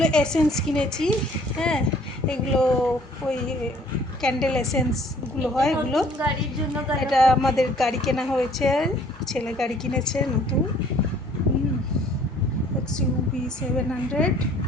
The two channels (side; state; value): both; normal; correlation 0.57